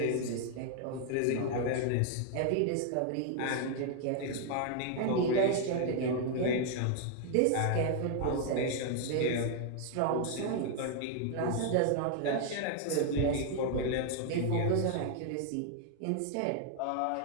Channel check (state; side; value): different; both; correlation 0.00